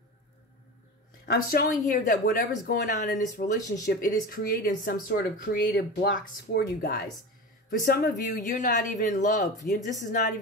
I'm showing here that whatever's going on in this relationship, it is creating some sort of creative blocks for you guys. For some of you, you're not even in love. This is not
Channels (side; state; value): both; normal; correlation 0.29